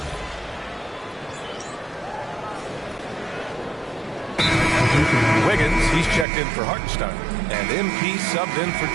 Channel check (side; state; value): left; drops out; at 6.2 s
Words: Wiggins, he's checked in for Hartenstein. And MP subbed in for